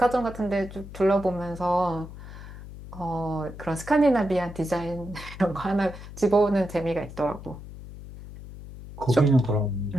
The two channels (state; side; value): noise; left; hum, 14 dB below the sound